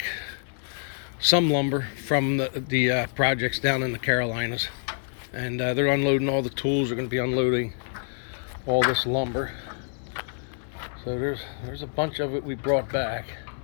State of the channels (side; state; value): right; silent; digital silence